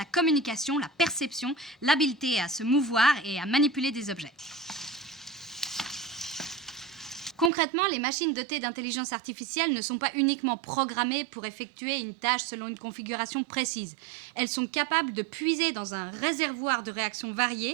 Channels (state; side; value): drops out; left; at 7.5 s